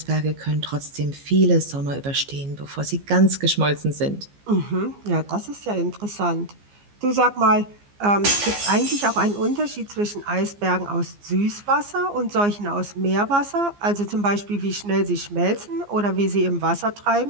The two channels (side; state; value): left; late; 15 ms